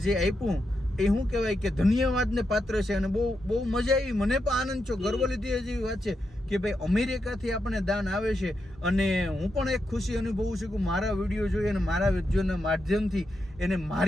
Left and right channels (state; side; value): normal; both; correlation 0.85